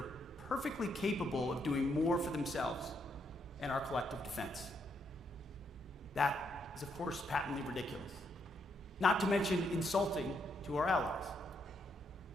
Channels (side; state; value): both; normal; correlation 0.76